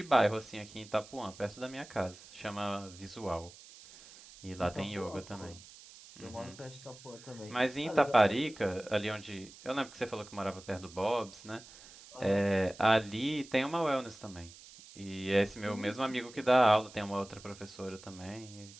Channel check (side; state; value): right; noise; hiss, 19 dB below the sound